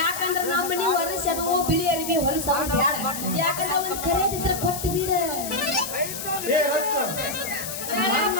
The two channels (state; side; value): noise; left; hiss, 7 dB below the sound